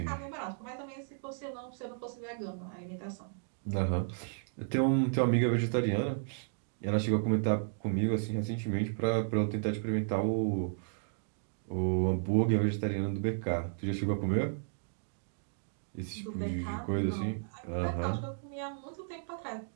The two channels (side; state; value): left; silent; digital silence